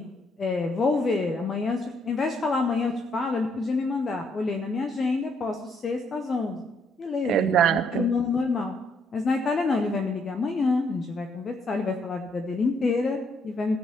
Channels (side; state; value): both; normal; correlation 0.71